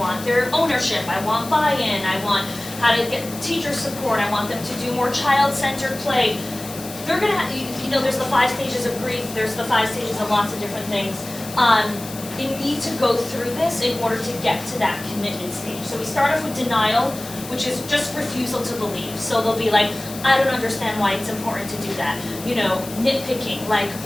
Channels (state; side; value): noise; left; hiss, 13 dB below the sound